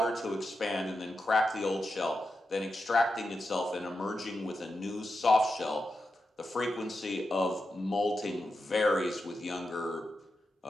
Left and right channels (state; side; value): normal; both; correlation 0.88